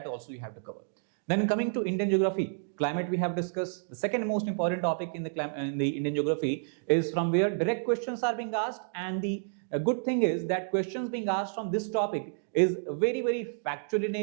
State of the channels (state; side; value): silent; left; digital silence